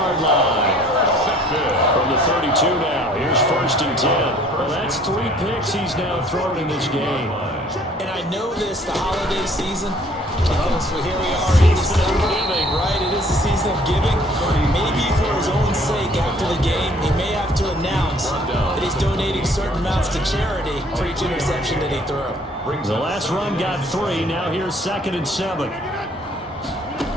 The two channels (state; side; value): normal; both; correlation 0.57